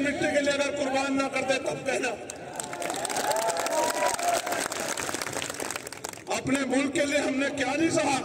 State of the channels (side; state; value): both; identical; correlation 1.00